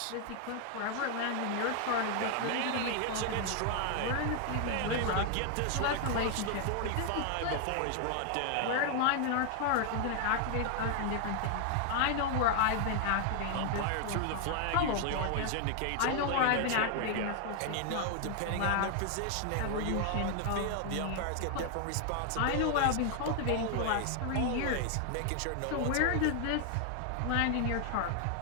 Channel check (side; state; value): both; different; correlation 0.00